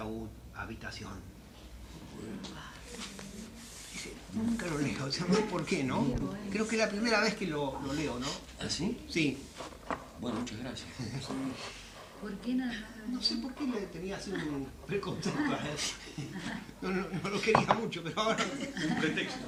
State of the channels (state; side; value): identical; both; correlation 1.00